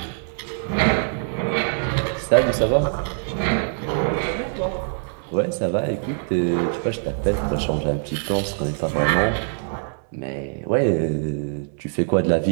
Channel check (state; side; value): silent; left; 63 dB below the other